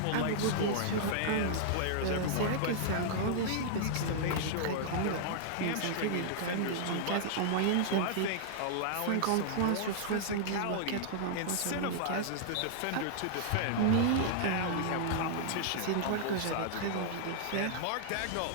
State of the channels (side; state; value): both; different; correlation -0.01